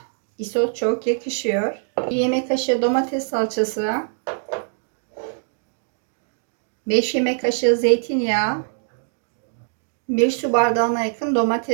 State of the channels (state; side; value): silent; left; digital silence